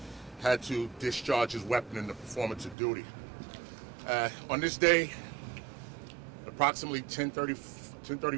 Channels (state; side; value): drops out; left; at 2.8 s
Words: had to discharge his weapon in the performance of duty. On this day, approximately